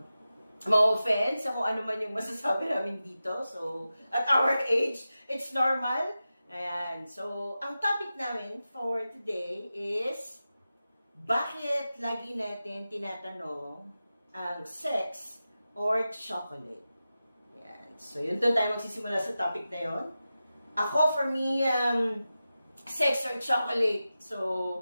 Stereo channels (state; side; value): inverted; both; correlation -0.93